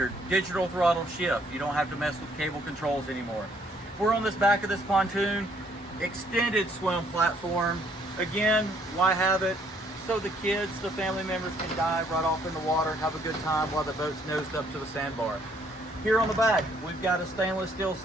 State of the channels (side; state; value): both; normal; correlation 0.66